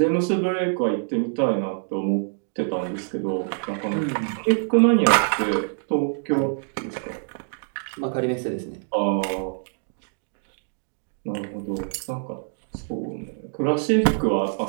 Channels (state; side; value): silent; left; digital silence